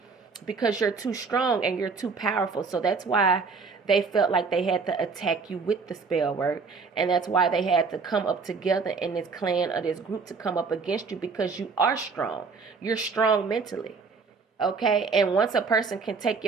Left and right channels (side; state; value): left; quieter; 4.7 dB